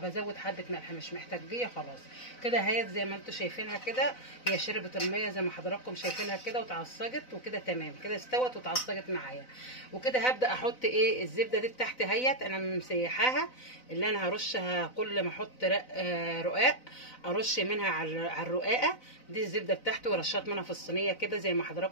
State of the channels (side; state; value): right; late; 4.0 ms